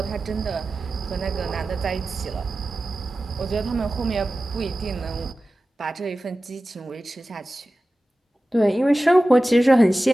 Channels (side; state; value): both; normal; correlation 0.95